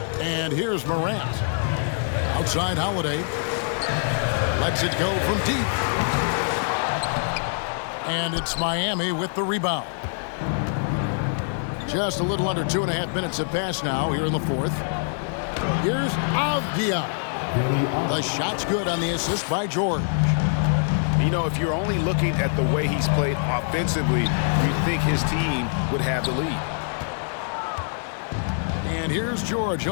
And here's Morant. Outside Holiday. Lets it go from deep. And it's Miami with the rebound. Just a little under 2.5 minutes have passed now here in the fourth. Here's Avdia. The shot's good on the assist by George. You know, if you're only looking at the way he's played offensively, you'd think his team would have the lead. And here's George.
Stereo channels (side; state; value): right; silent; digital silence